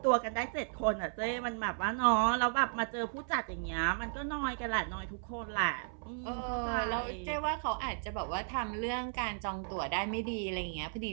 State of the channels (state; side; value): silent; left; 55 dB below the other